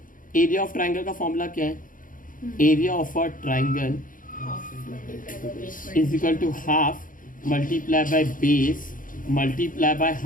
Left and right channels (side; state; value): right; late; 0.39 ms